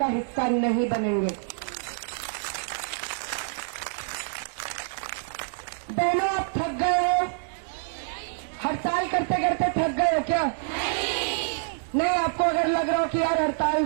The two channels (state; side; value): silent; left; digital silence